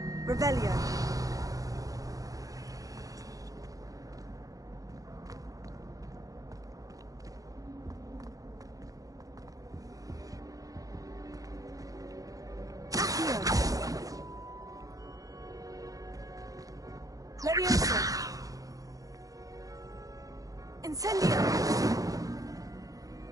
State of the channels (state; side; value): late; left; 0.17 ms